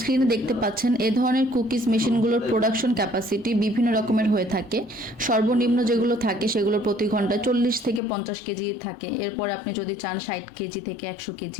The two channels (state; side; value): drops out; right; at 8.0 s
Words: দেখতে পাচ্ছেন এ ধরনের কুকিজ মেশিনগুলোর প্রোডাকশন ক্যাপাসিটি বিভিন্ন রকমের হয়ে থাকে। সর্বনিম্ন যেগুলো থাকে সেগুলো প্রতি ঘন্টায় 40 থেকে 50 কেজি থাকে। এরপর আপনি যদি চান 60 কেজি থেকে 100